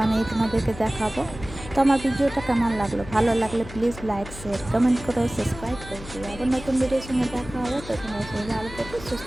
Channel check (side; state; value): left; noise; hum, 14 dB below the sound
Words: তোমাদেরকে দেখাবো। তো আমার ভিডিওটা কেমন লাগলো, ভালো লাগলে প্লিজ লাইক, শেয়ার, কমেন্ট করো, সাবস্ক্রাইব করে দিও। আবার নতুন ভিডিওর সঙ্গে দেখা হবে। তো তোমার সঙ্গে ভালো থেকো, সুস্থ